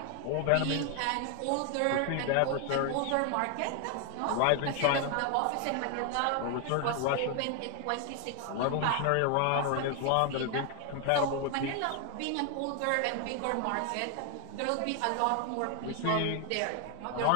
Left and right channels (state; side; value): different; both; correlation 0.00